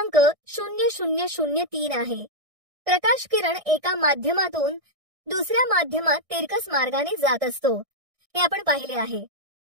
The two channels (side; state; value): left; late; 1.6 ms